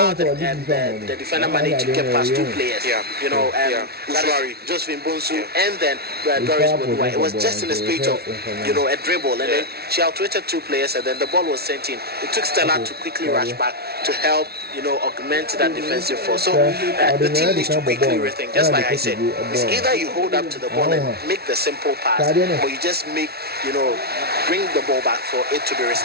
the defender managed to get past 2 players. Uzwari, Josephine Bonsu, and then Doris Bedua. It was just in the spirit of a dribble, and then she outwitted 2 players, and then the ball was sent in. It took Stella to quickly rush back to help augment that defensive force. So the team needs to quickly rethink. Just like I said, it's either you hold up to the ball and make the simple pass, or you just bring the ball back for it to be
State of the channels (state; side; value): late; left; 0.45 ms